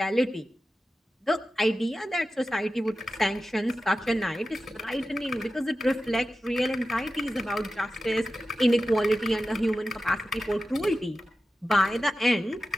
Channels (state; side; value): normal; both; correlation 0.93